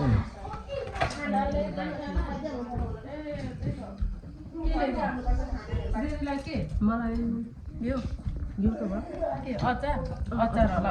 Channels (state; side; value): identical; both; correlation 1.00